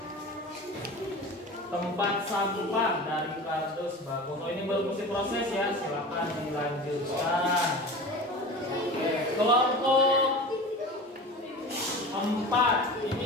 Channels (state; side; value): normal; both; correlation 0.34